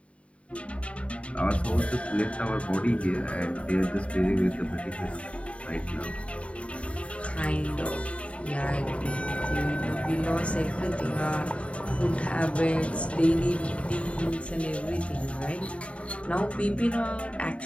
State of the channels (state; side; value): late; right; 0.062 ms